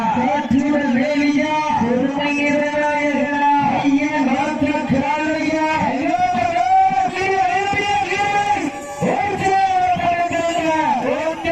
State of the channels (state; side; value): identical; both; correlation 1.00